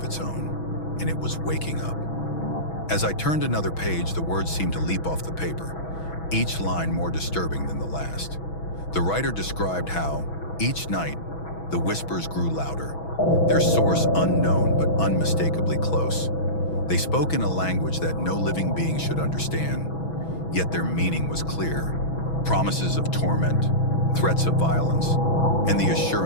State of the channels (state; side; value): late; right; 6.1 ms